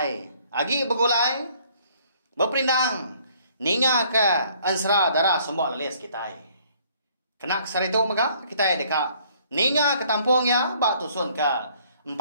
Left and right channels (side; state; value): both; inverted; correlation -0.61